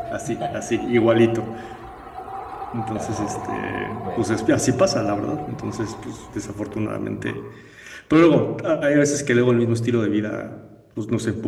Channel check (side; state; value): both; identical; correlation 1.00